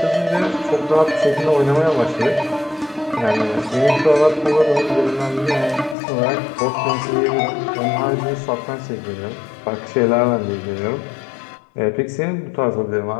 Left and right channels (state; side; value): drops out; right; at 6.0 s